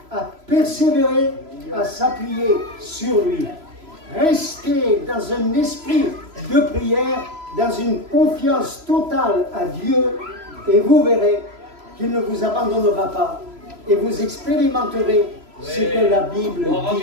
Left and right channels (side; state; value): left; late; 3.0 ms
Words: à persévérer, à s'appuyer sur lui. Rester dans un esprit de prière, dans une confiance totale à Dieu, et vous verrez qu'il ne vous abandonnera pas et vous expérimenterez ce que la Bible